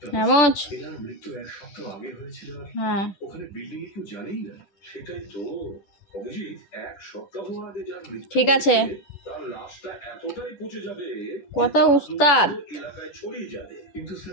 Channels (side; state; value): right; late; 10 ms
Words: হ্যাঁ মোচ। মৃত্যু 1 সপ্তাহ আগে হয়েছিল। হ্যাঁ ওখানে বিল্ডিং এ কেউ জানেই না। সেটাই তো অভিজিৎ, 1 সপ্তাহ আগে যার মৃত্যু ঠিক আছে, তার লাশটা এতটাই পচে যাবে, কত উস্তাদ এলাকায় ছড়িয়ে যাবে। কিন্তু